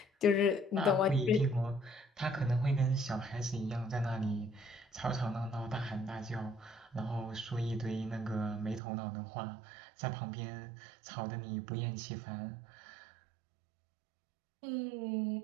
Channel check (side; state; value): left; drops out; at 8.8 s